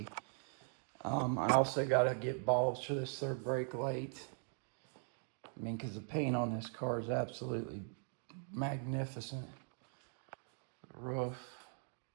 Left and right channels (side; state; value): left; silent; 51 dB below the other